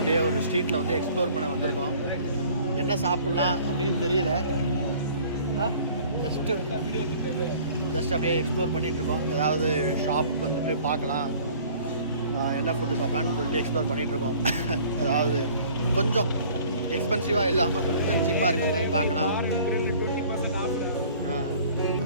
ஒரு ஸ்ட்ரீட்டில் வந்து எக்ஸ்ப்ளோர் பண்ண வந்திருக்கோம். என்ன சாப்பிட்லாம் அப்படின்னு தெரியல. ஜஸ்ட் அப்படியே எக்ஸ்ப்ளோர் பண்ணிகிட்ருக்கோம். ஏதாவது ஷாப் வந்துட்டு பார்க்கலாம், என்ன ஃபுட்டு சாப்பிட்லான்னு சொல்லிட்டு எக்ஸ்ப்ளோர் பண்ணிகிட்ருக்கோம். ஏதாவது கொஞ்சம் எக்ஸ்பென்சிவாக இல்லாமல் கொஞ்சம் சீப்பாக இருக்கிற மாதிரி பார்க்கலாம்.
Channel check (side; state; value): both; inverted; correlation -0.51